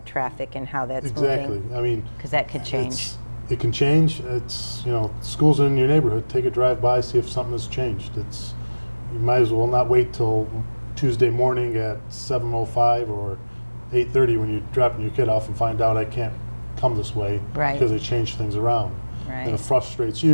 traffic and how that's Exactly. moving. I mean, Because that could change. It can change. It's schools in your neighborhood. Take a drive by, see if something has changed. You might as well not wait till Tuesday morning at 7:05 or 8:30 when you're dropping your kid off and find out I can't come this way because they changed things around. Right. And it frustrates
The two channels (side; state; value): both; inverted; correlation -1.00